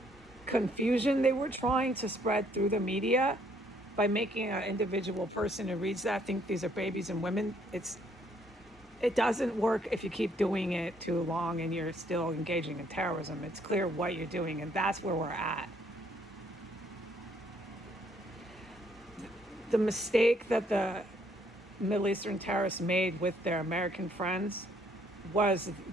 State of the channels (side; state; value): both; normal; correlation 0.67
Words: confusion they were trying to spread through the media by making an individual person who reads that think these are babies and women. It doesn't work if you keep doing it too long and you're still engaging in terrorism. It's clear what you're doing, and that's where we're at. The mistake that the Middle Eastern terrorists made with their American friends was